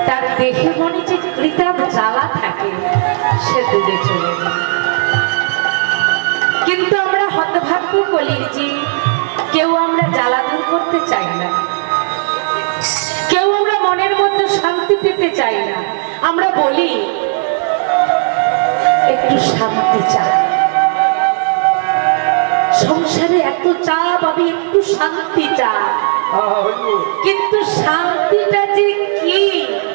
তার দেহে মনে যে কৃতাপ জ্বালা থাকে সে দূরে চলে যায়। কিন্তু আমরা হতভাগ্য কলির জীব, কেউ আমরা জ্বালা দূর করতে চাই না, কেউ আমরা মনের মধ্যে শান্তি পেতে চাই না। আমরা বলি একটু শান্তি চাই, সংসারে এত চাপ, আমি একটু শান্তি চাই, কিন্তু শান্তিটা যে কি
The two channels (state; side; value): silent; left; digital silence